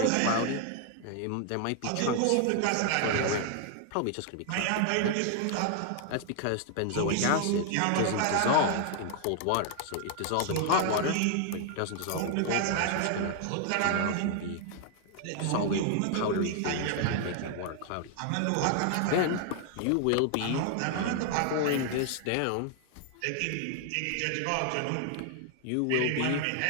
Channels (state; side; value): different; both; correlation 0.00